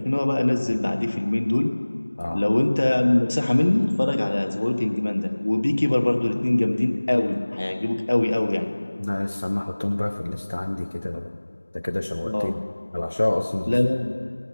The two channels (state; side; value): inverted; both; correlation -1.00